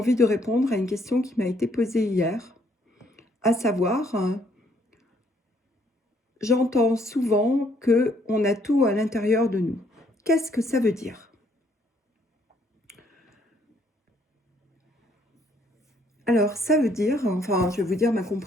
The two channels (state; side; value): normal; both; correlation 0.67